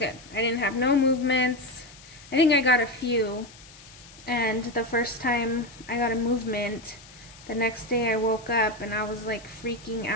I didn't have no movements. I think I got a few, and the first time I got a movement, the next day I woke up and I was like freaking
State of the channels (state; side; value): noise; left; hiss, 21 dB below the sound